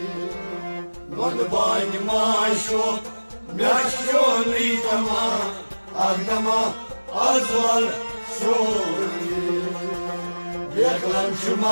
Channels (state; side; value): inverted; both; correlation -1.00